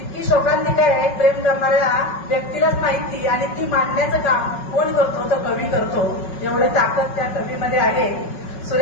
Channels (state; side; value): late; right; 5.4 ms